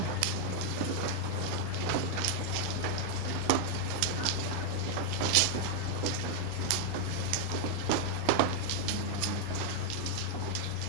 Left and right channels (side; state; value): both; different; correlation 0.00